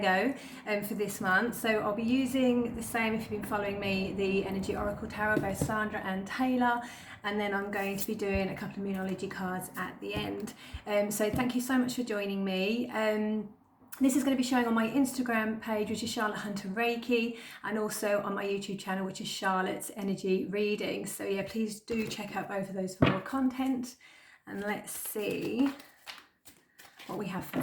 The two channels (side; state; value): both; identical; correlation 1.00